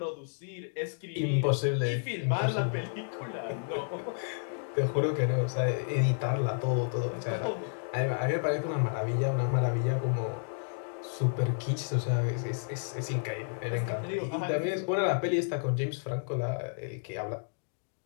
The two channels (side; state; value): right; silent; digital silence